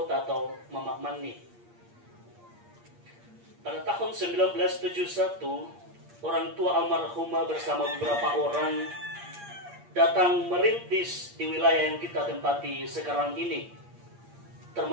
atau Mama Mani. Pada tahun 1971, orang tua almarhumah bersama beberapa orang datang merintis di wilayah yang kita tempati sekarang ini,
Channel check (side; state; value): left; late; 8.6 ms